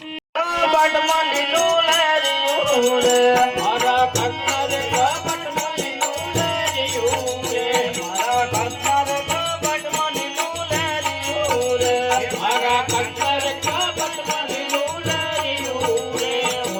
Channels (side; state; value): both; identical; correlation 1.00